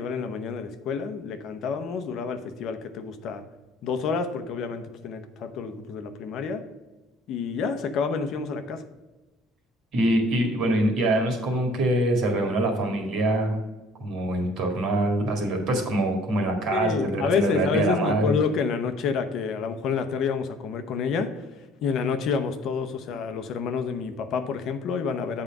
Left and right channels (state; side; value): normal; both; correlation 0.54